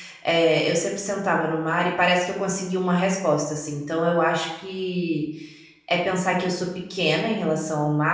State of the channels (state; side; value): identical; both; correlation 1.00